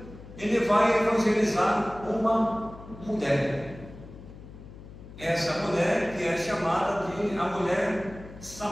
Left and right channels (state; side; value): noise; left; hum, 16 dB below the sound